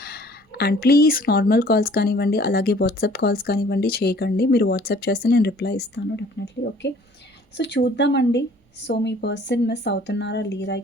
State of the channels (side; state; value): both; normal; correlation 0.54